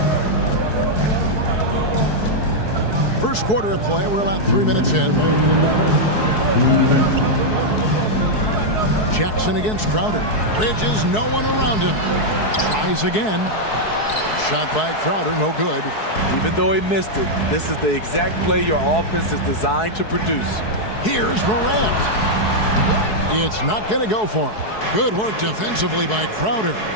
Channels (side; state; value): right; late; 4.7 ms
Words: First quarter of play. We're about 3 minutes in. Jackson against Crowder. Bridges, no one around him. Tries again. Shot by Crowder, no good. Even though he missed it, this is the exact play your offense is designed to produce. Here's Morant. It's not going to go for him. Good work defensively by Crowder.